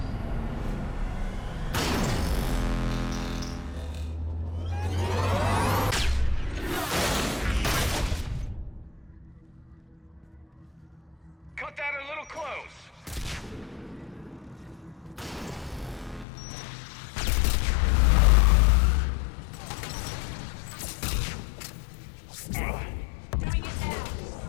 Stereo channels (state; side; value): drops out; right; at 16.2 s